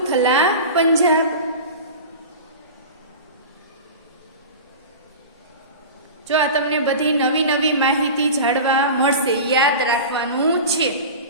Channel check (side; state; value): both; inverted; correlation -0.31